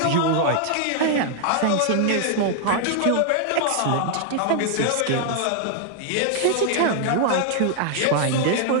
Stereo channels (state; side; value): different; both; correlation 0.00